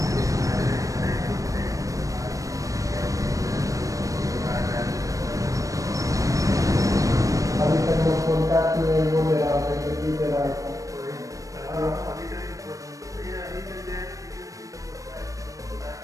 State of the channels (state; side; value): late; left; 0.16 ms